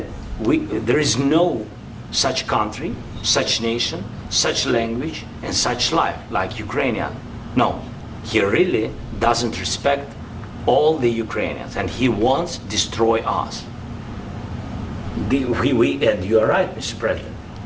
there is no such country, such nation, such language, and such life like Ukrainian. No, he really doesn't respect all the Ukrainians, and he wants to destroy us. And you are right, Mr. President,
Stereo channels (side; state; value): both; identical; correlation 1.00